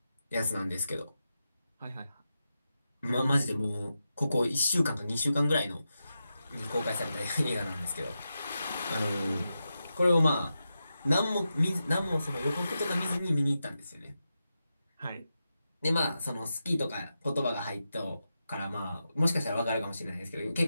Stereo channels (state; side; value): inverted; both; correlation -0.89